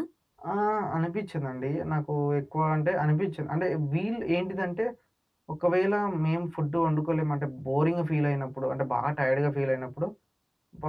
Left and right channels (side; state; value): both; identical; correlation 1.00